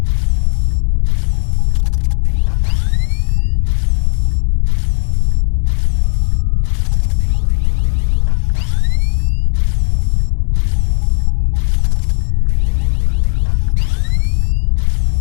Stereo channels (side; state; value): right; silent; digital silence